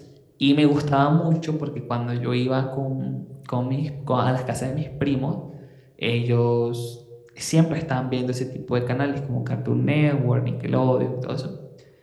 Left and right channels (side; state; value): both; identical; correlation 1.00